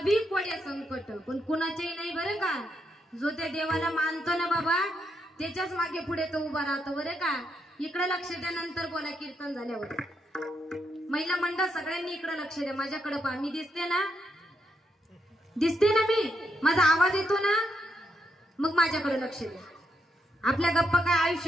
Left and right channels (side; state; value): both; normal; correlation 0.80